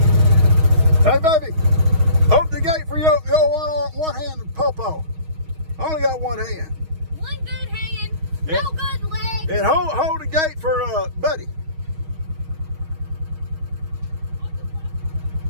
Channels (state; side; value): late; left; 6.4 ms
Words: Hey, baby, open the gate for your one-handed popo. I only got one hand. One good hand, Yeah. no good leg. And hold the gate for Buddy.